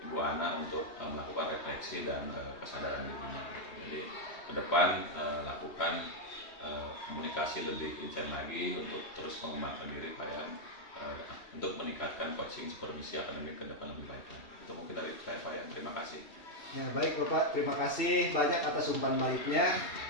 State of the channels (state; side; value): late; right; 2.8 ms